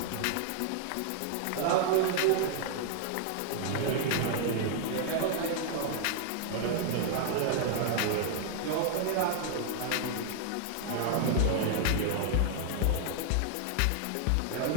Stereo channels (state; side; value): different; both; correlation 0.00